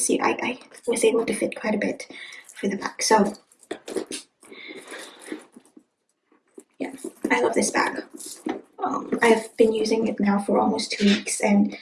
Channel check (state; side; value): identical; both; correlation 1.00